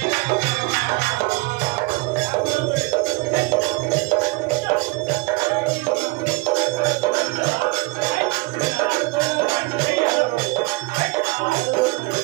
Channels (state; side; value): quieter; left; 25.1 dB